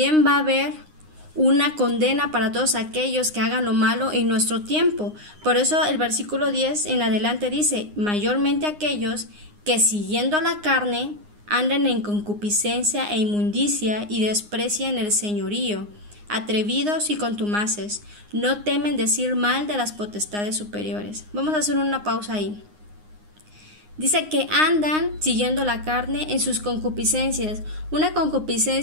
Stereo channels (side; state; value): left; late; 9.7 ms